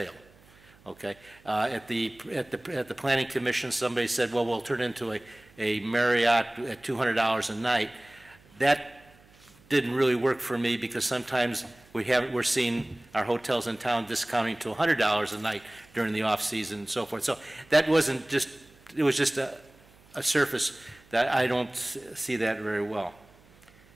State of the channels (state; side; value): noise; right; hum, 28 dB below the sound